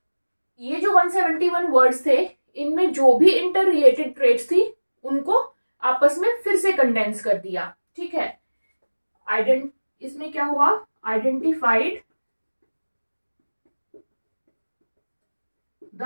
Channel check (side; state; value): both; inverted; correlation -1.00